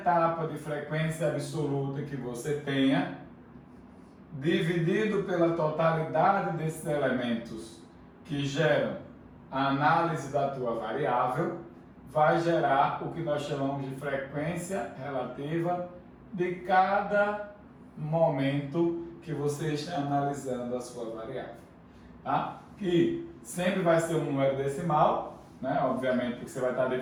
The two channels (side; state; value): both; identical; correlation 1.00